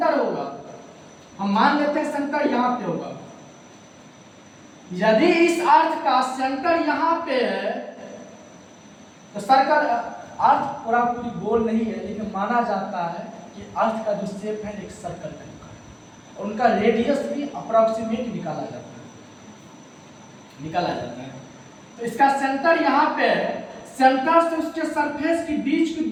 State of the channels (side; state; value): both; identical; correlation 1.00